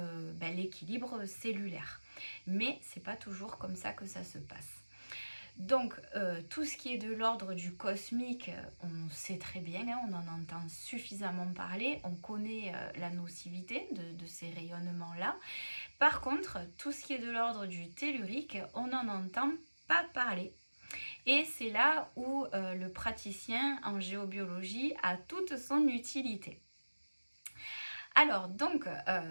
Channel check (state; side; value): inverted; both; correlation -1.00